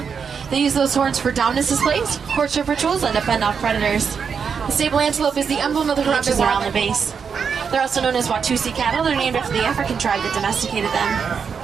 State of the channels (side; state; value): left; quieter; 6.4 dB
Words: They use those horns for dominance displays, courtship rituals, and to fend off predators. The sable antelope is the emblem of the ranches around the base. They're also known as Watusi cattle. They're named after the African tribe that domesticated them.